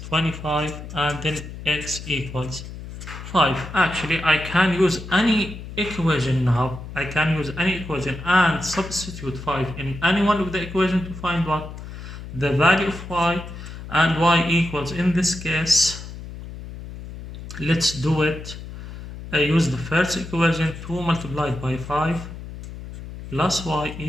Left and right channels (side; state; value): left; noise; hum, 11 dB below the sound